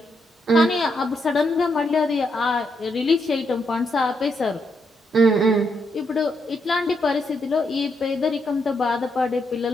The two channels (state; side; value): normal; both; correlation 0.79